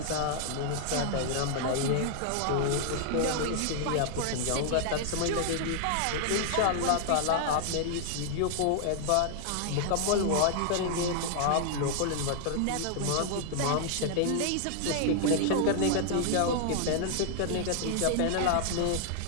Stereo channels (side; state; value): both; different; correlation 0.00